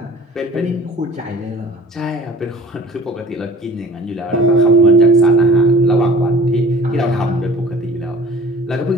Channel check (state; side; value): normal; both; correlation 0.46